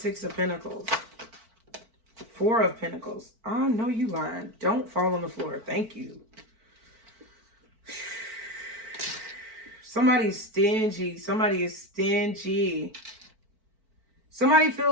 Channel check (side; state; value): left; late; 4.5 ms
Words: of Pentacles? Four of Pentacles. Oh, no, you lying. Don't fall on the floor. Thank you. Somebody's stingy. Somebody is stingy. Somebody